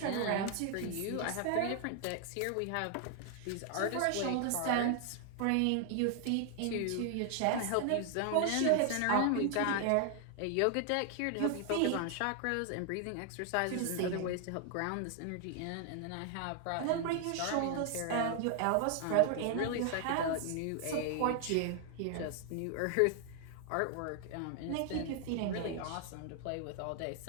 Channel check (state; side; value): different; both; correlation 0.00